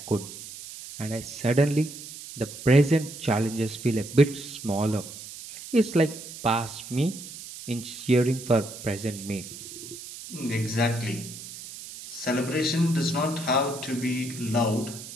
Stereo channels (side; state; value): right; noise; hiss, 13 dB below the sound